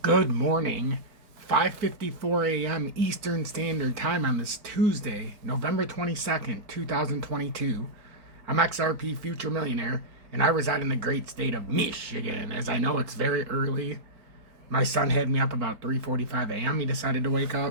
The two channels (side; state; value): left; late; 4.4 ms